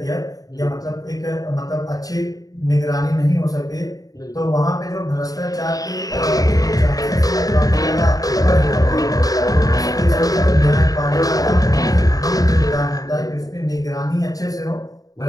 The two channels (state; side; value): late; right; 0.18 ms